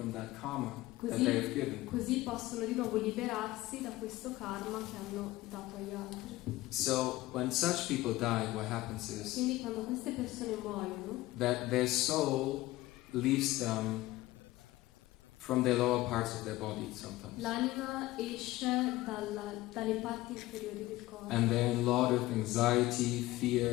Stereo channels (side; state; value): right; quieter; 17.8 dB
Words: that karma that they have given. Così possono di nuovo liberarsi da questo karma che hanno dato agli altri. So when such people die, what happens is Quindi quando queste persone muoiono, that their soul leaves them from their lower parts of their body sometimes. l'anima esce dalle parti inferiori del corpo And they're in a lot of anxiety,